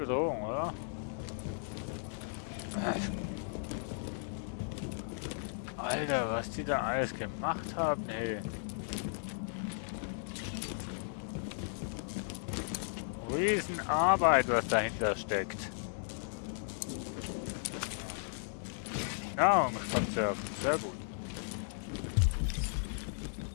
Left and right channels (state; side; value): silent; right; digital silence